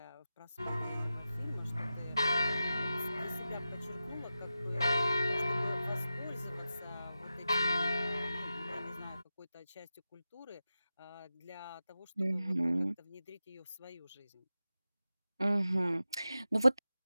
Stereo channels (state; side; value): inverted; both; correlation -0.93